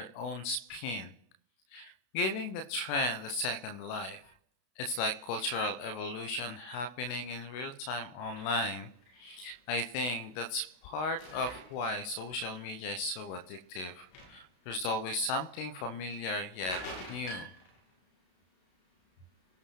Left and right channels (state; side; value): late; right; 32 ms